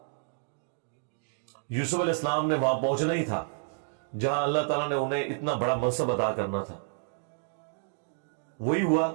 یوسف علیہ السلام نے وہاں پہنچنا ہی تھا جہاں اللہ تعالیٰ نے انہیں اتنا بڑا منصب عطا کرنا تھا. وہی ہوا.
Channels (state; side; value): silent; left; digital silence